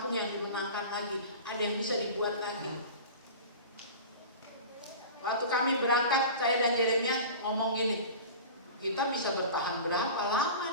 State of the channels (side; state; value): both; inverted; correlation -0.35